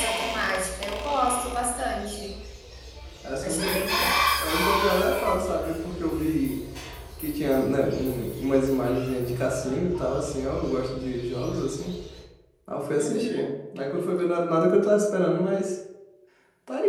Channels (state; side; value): identical; both; correlation 1.00